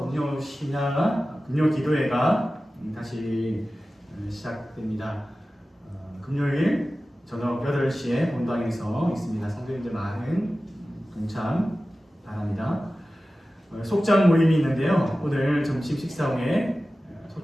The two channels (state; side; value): normal; both; correlation 0.95